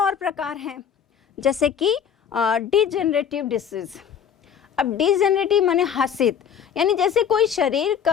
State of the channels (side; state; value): right; quieter; 8.1 dB